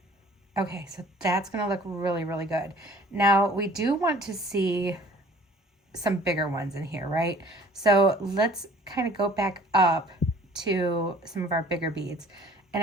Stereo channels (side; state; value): both; normal; correlation 0.51